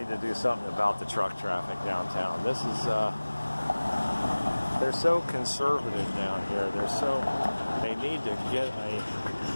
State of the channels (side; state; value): both; inverted; correlation -1.00